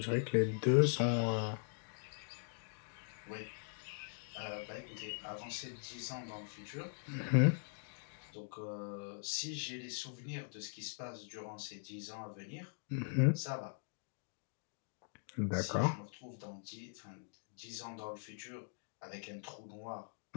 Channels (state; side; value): silent; right; digital silence